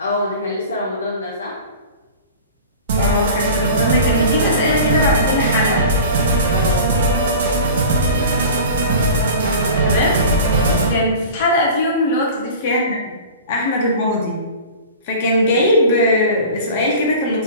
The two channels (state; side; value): inverted; both; correlation -0.38